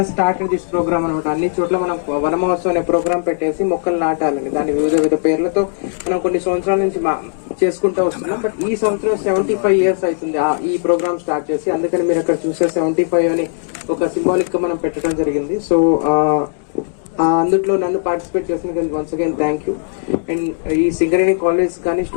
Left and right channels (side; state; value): right; silent; digital silence